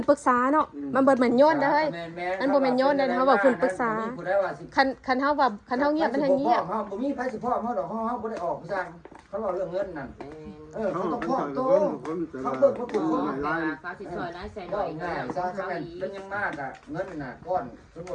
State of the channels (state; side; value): identical; both; correlation 1.00